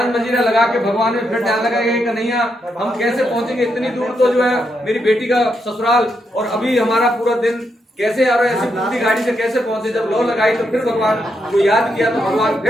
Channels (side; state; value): both; normal; correlation 0.81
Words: मजीरा लगा के भगवान में फिर ध्यान लगाया कि कन्हैया हम कैसे पहुंचेंगे इतनी दूर, तो जो है मेरी बेटी का ससुराल और अभी हमारा पूरा दिन कैसे आ रहा है, ऐसी पूरी गाड़ी से कैसे पहुंचे। जब लौ लगाई तो फिर भगवान को याद किया तो भगवान